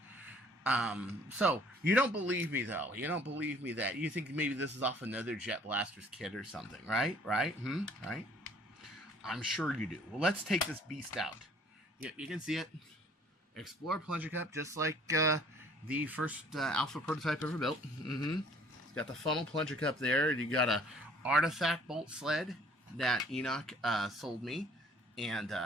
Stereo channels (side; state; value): both; normal; correlation 0.56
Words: So you don't believe me though. You don't believe me that you think maybe this is off another Jet Blaster's kit or something, right? Right? Right? I'm sure you do. Well, let's take this beast out. You can see it. Explorer plunger cup, just like the first Alpha prototype ever built. It's got the funnel plunger cup there. You got a artifact bolt sled that Enoch sold me and